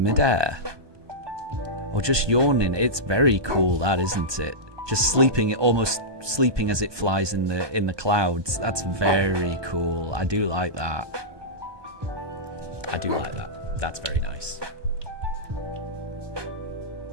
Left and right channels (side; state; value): left; late; 1.2 ms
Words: Or just yawning? It's very cool, that, isn't it? Just sleeping, almost sleeping as it flies in the clouds. That's very cool. I do like that. I do like that. That's very nice.